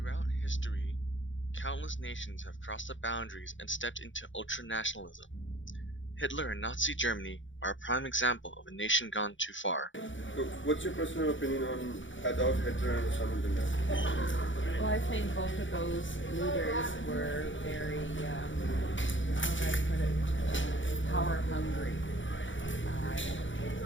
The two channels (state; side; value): late; right; 0.56 ms